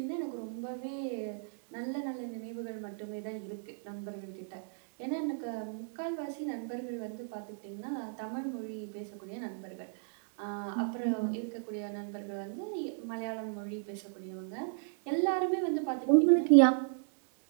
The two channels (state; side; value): silent; left; digital silence